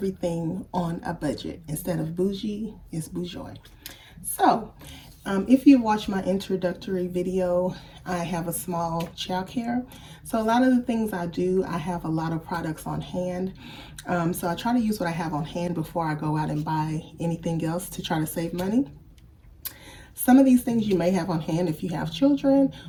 on a budget. Instead of bougie, it's bourgeois. So if you watch my introductory video, I have a small childcare. So a lot of the things I do, I have a lot of products on hand. So I try to use what I have on hand before I go out and buy anything else to try to save money. Some of these things you may have on hand if you have children,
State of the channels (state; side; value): identical; both; correlation 1.00